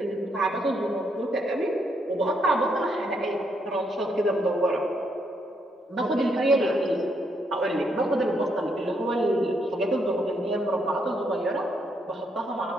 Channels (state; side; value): normal; both; correlation 0.76